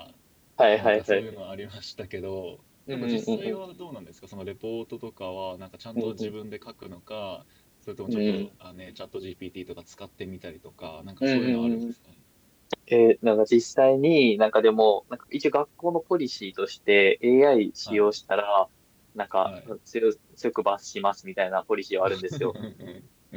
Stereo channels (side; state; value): both; identical; correlation 1.00